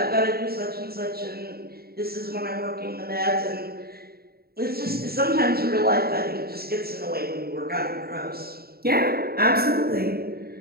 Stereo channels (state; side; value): late; left; 0.45 ms